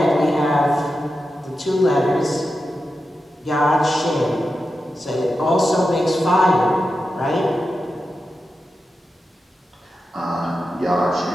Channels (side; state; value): both; normal; correlation 0.90